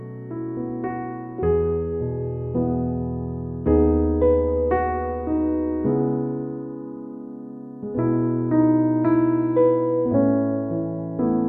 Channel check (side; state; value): both; identical; correlation 1.00